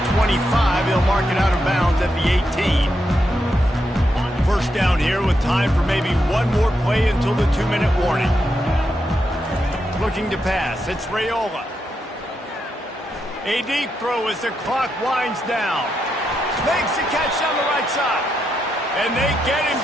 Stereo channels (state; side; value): normal; both; correlation 0.83